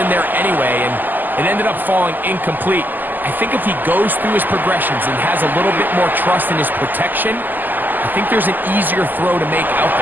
there anyway, and it ended up falling incomplete. I think if he goes through his progressions and has a little bit more trust in his protection, I think there's an easier throw to make out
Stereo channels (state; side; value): late; left; 0.087 ms